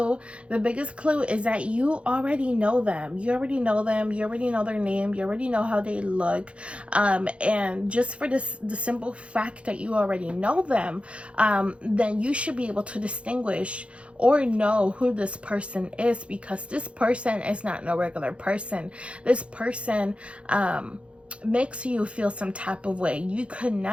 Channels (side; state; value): left; late; 0.060 ms